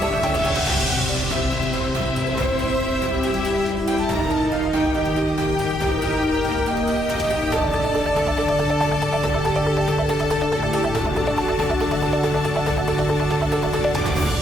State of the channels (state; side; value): normal; both; correlation 0.76